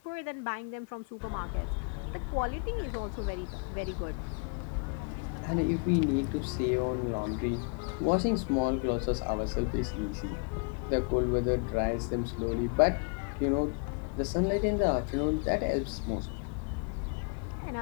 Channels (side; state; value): right; quieter; 34.8 dB